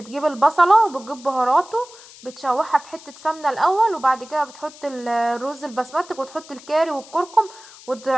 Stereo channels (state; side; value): noise; left; hiss, 20 dB below the sound